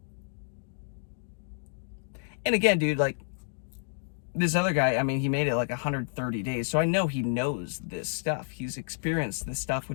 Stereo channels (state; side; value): silent; right; digital silence